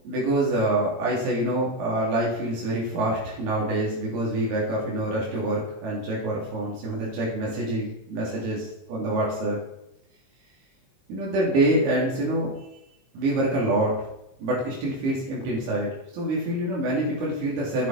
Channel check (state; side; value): late; left; 22 ms